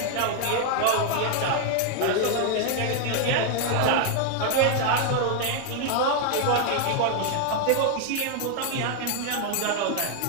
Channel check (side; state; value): both; different; correlation 0.00